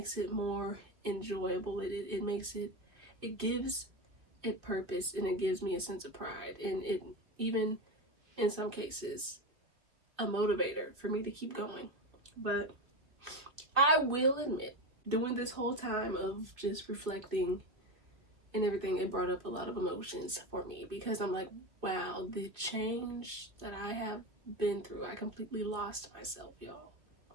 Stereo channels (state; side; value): late; left; 2.5 ms